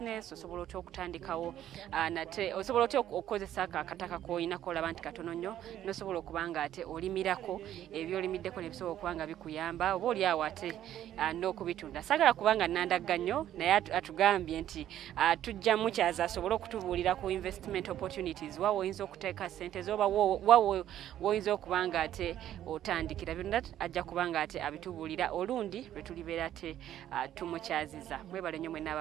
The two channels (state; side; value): quieter; left; 11.7 dB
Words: osobola otya okutandikawo nate osobola otya okukozesa akataka k'oyinako olaba nti katono nnyo n'osobola okuba nga ate olimirako ebyolimiddeko ne bisobola okuba nga bikuyamba oba oli awo ate n'okubitunda. Saagala kubanga nnandagga nnyo naye atugambye nti tujja mukyaza asobole okutubuulira ku investment opportunities wa woyinza okuteeka ssente zo oba woyinza okuba nga ate otandikira byonna ajja kuba nga ate abitubuulira olundi lwe tulibeera ate tumukyaziza. Mwebale nnyo mwenna